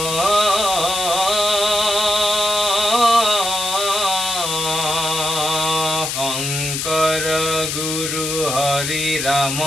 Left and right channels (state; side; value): noise; left; hiss, 3 dB below the sound